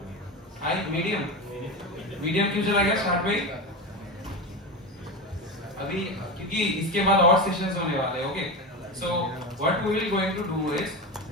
high, medium. Medium क्यों चला गया स्टार्ट में? अभी क्योंकि इसके बाद और सेशंस होने वाले हैं. Okay. So what we will going to do is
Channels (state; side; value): normal; both; correlation 0.21